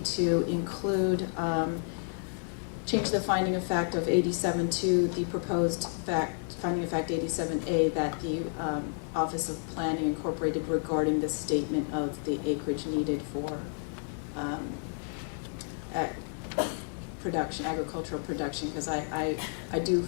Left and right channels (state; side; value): silent; right; 57 dB below the other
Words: include, change the finding of fact of 87 to the proposed finding of fact 87A that the Office of Planning incorporated regarding the statement of the acreage needed for agricultural production, because I do